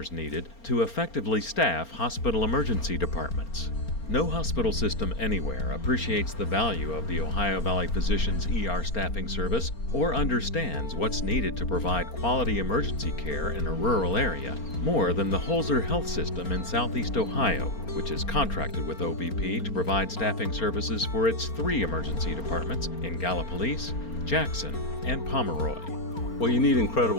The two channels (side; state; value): right; late; 4.4 ms